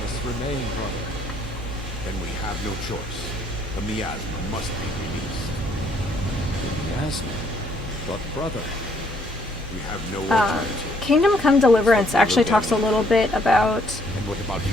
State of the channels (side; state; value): both; normal; correlation 0.67